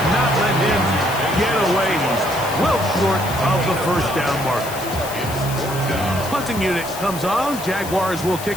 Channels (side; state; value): left; noise; hiss, 11 dB below the sound